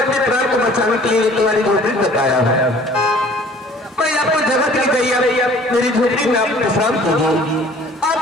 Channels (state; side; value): normal; both; correlation 0.51